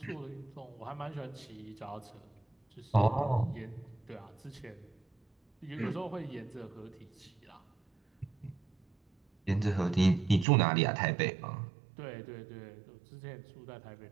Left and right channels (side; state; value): left; drops out; at 10.5 s